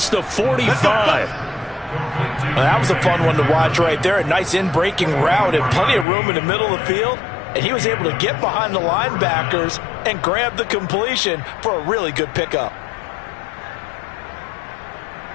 the 45. That was a fun one to watch right there. A nice in-breaking route and plenty of room in the middle of the field. And he was able to get behind the linebackers and grab the completion for a really good pickup.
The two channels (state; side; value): drops out; right; at 6.1 s